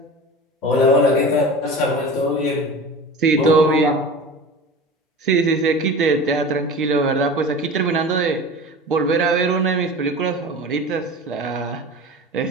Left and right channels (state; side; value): normal; both; correlation 0.34